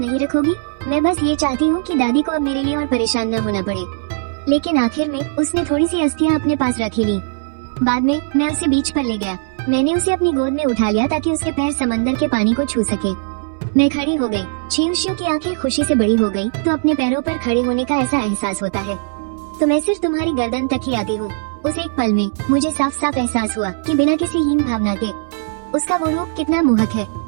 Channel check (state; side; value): silent; left; 62 dB below the other